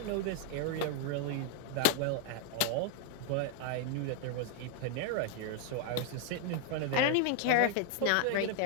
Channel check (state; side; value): different; both; correlation 0.00